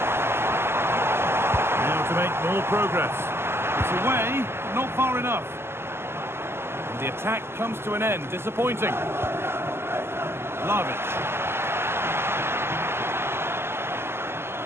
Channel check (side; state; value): left; late; 0.12 ms